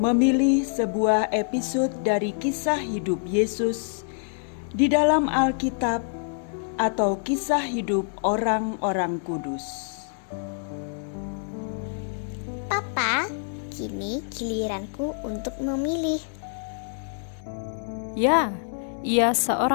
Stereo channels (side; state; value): right; silent; digital silence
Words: sebuah episode dari kisah hidup Yesus di dalam Alkitab atau kisah hidup orang-orang kudus. Papa, kini giliranku untuk memilih. Ya, ia